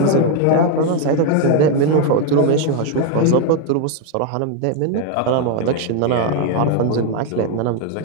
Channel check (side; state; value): both; different; correlation 0.01